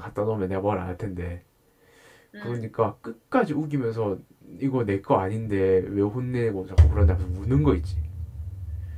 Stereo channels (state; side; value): identical; both; correlation 1.00